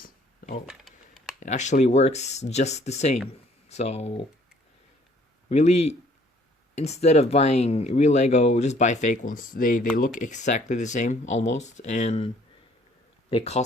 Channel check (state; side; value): normal; both; correlation 0.60